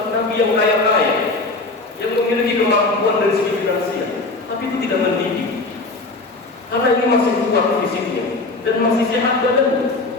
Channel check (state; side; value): quieter; right; 3.4 dB